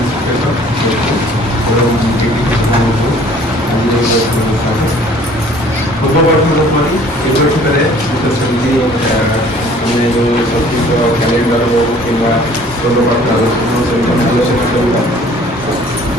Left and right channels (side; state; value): both; normal; correlation 0.53